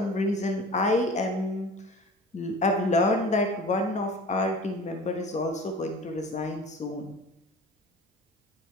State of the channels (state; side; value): normal; both; correlation 0.41